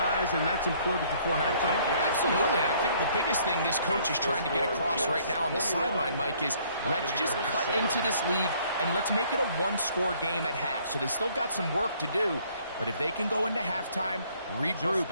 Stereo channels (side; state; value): both; inverted; correlation -0.61